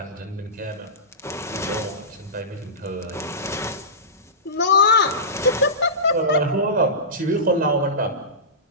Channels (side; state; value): both; normal; correlation -0.19